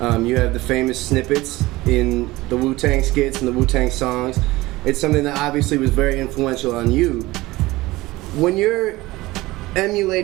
You have the famous snippets in the Wu-Tang skits and the Wu-Tang songs. It's something that obviously was very influential on you. When you're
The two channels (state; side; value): quieter; left; 19.4 dB